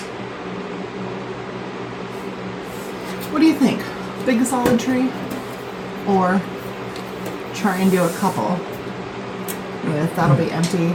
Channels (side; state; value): both; identical; correlation 1.00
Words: What do you think? Big solid tree or try and do a couple with, that'll be empty,